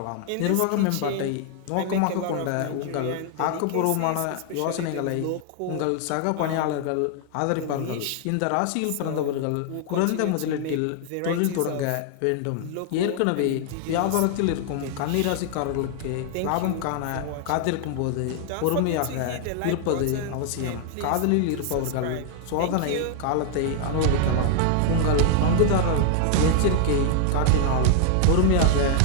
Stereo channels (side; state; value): both; different; correlation 0.00